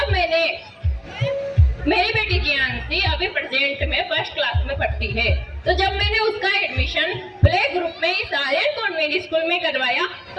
मैंने मेरी बेटी जियांशी अभी प्रेजेंट में फर्स्ट क्लास में पढ़ती है, तो जब मैंने उसका एडमिशन प्ले ग्रुप में इस आर्यन कॉन्वेंट स्कूल में करवाया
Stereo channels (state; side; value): identical; both; correlation 1.00